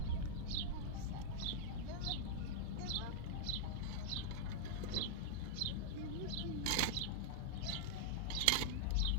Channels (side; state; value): both; different; correlation -0.01